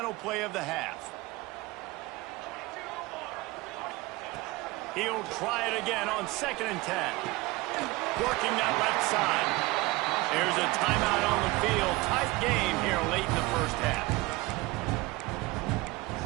play of the half. He'll try it again on 2nd and 10. Working that left side. There's a timeout on the field. Tight game here late in the first half.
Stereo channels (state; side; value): quieter; left; 21.4 dB